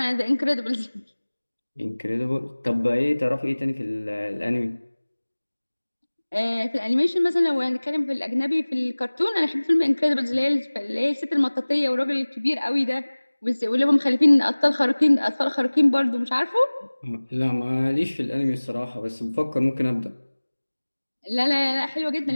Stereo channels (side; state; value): both; inverted; correlation -1.00